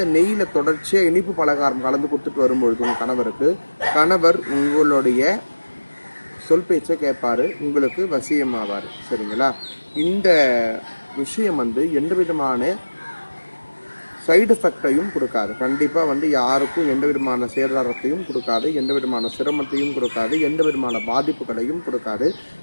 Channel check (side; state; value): both; inverted; correlation -1.00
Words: நெய்யில் தொடர்ச்சியாக இனிப்பு பலகாரம் கலந்து கொடுத்துட்டு வரும்பொழுது உங்கள் கணவர் உங்களுடைய சொல் பேச்சை கேட்பார், உங்களுக்கு வசியமாவார். சரிங்களா? இந்த விஷயம் எந்த விதமான சைடு எஃபெக்டையும் கொடுக்காது. கண்டிப்பாக யாருக்கும் எந்த விதமான சேதாரத்தையும் கொடுக்காது, எந்த விதமான சிரமத்தையும் கொடுக்காது, எந்த விதமான பாதிப்புகளையும் கொடுக்காது.